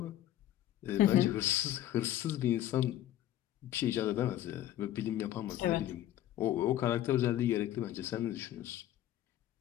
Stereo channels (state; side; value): quieter; right; 12.9 dB